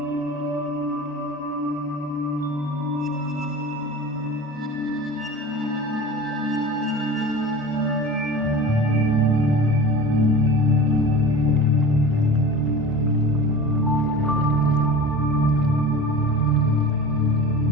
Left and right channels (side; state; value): both; normal; correlation 0.35